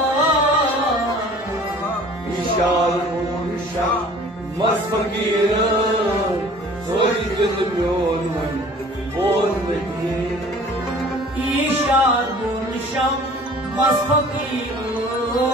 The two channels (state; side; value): normal; both; correlation 0.49